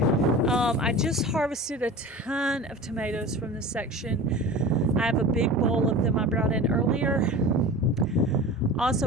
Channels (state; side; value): normal; both; correlation 0.35